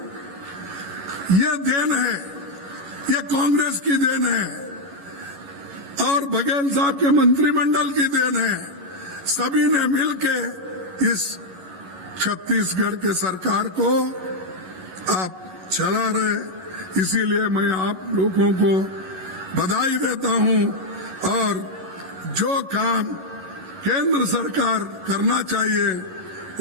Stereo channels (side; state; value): left; late; 11 ms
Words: ये देन है, ये कांग्रेस की देन है और बघेल साहब के मंत्रिमंडल की देन है। सभी ने मिलके इस छत्तीसगढ़ के सरकार को आप चला रहे। इसीलिए मैं आप लोगों को बधाई देता हूं और जो काम केंद्र सरकार करना चाहिए